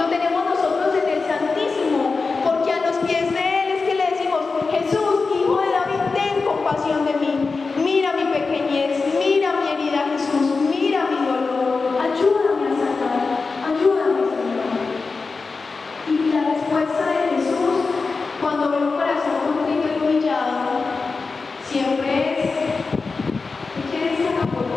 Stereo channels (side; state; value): right; quieter; 4.3 dB